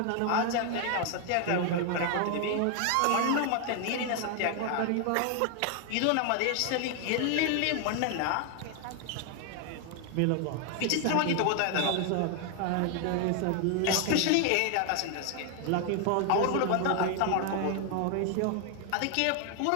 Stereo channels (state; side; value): different; both; correlation 0.00